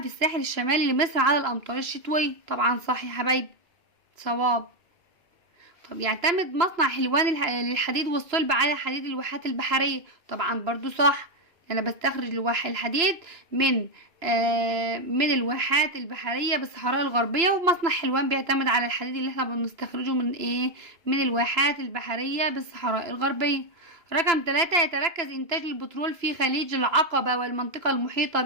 في الساحل الشمالي لمصر على الامطار الشتوية. طبعا صح يا حبايبي، صواب. طب يعتمد مصنع حلوان للحديد والصلب على حديد الواحات البحرية. طبعا برضو صح. انا بستخرج الحديد من الواحات البحرية بالصحراء الغربية، ومصنع حلوان بيعتمد على الحديد اللي احنا بنستخرجه من ايه؟ من الواحات البحرية بالصحراء الغربية. رقم 3 يتركز انتاج البترول في خليج العقبة والمنطقة المحيطة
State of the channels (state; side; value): late; left; 2.9 ms